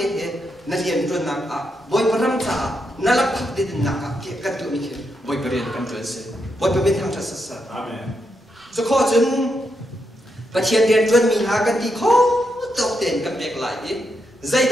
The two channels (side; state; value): both; normal; correlation 0.82